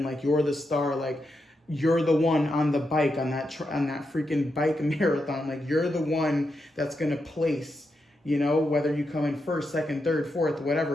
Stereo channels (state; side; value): normal; both; correlation 0.85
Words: like you're the star, like you're the one on the bike, on that freaking bike marathon. Like you're the one that's going to place, you know, whether you come in first, second, third, fourth,